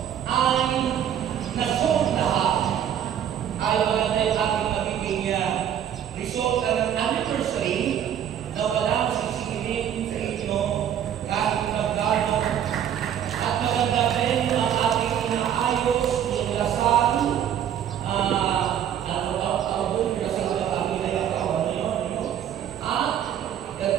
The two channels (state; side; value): quieter; left; 9.7 dB